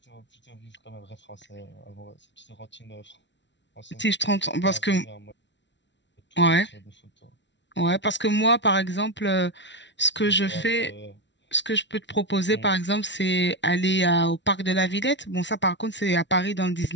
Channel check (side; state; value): right; late; 0.52 ms